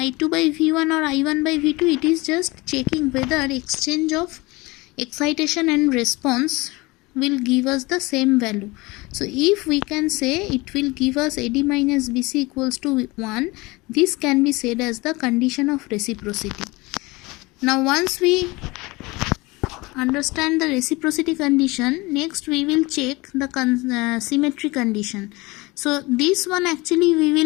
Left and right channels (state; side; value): quieter; right; 23.2 dB